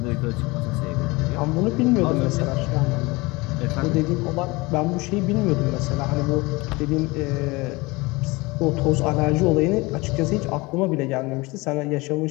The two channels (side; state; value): right; quieter; 23.8 dB